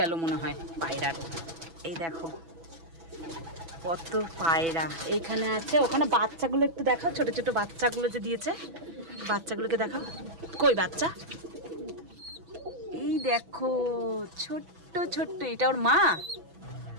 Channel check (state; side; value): late; left; 6.0 ms